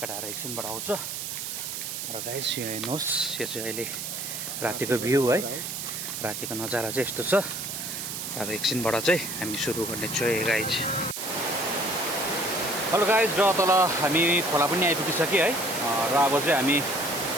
एकछिनबाट आउँछ र गाइस यो हेर्नुहोस् यो चाहिँ अहिले रातिको भ्यू है रातिको नजारा चाहिँ यस्तो छ अब एकछिनबाट चाहिँ हामी सुरु गर्नेछु है गाइज हेलो गाइज र तल हामी खोला पनि आइपुगिसक्यो है र अब चाहिँ हामी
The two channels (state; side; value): noise; right; hiss, 5 dB below the sound